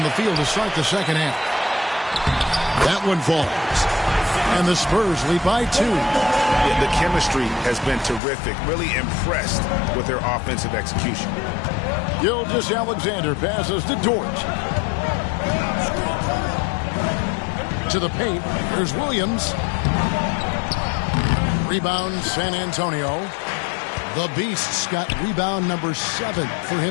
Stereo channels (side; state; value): right; drops out; at 8.2 s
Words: the field to start the second half. That one falls. And the Spurs lead by 2. Yeah, the chemistry has been terrific. Really impressed with their offensive execution. Gilgeous-Alexander passes to Dort. To the paint. There's Williams. Rebound San Antonio. The Beasts got rebound number 7 for